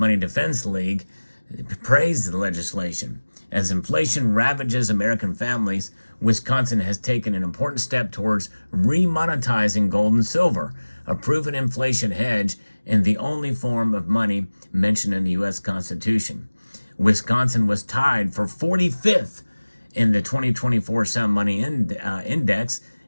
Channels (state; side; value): inverted; both; correlation -1.00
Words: Defense League, praised the legislation As inflation ravages American families, Wisconsin has taken an important step towards remonetizing gold and silver, a proven inflation hedge and the only form of money mentioned in the U.S. Constitution. Wisconsin was tied for 45th in the 2024 Sound Money Index.